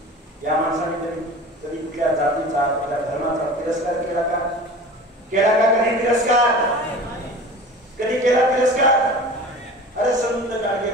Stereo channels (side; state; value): both; normal; correlation 0.38